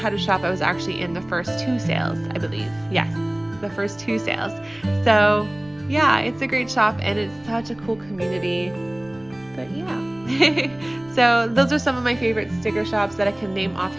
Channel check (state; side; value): noise; right; rumble, 28 dB below the sound